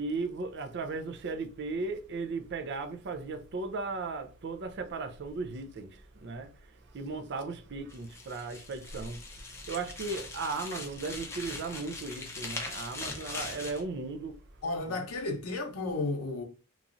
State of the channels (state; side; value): normal; both; correlation 0.15